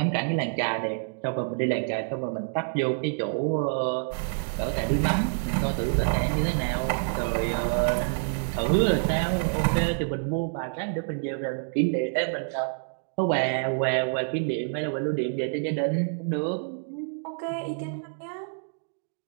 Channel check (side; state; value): left; silent; digital silence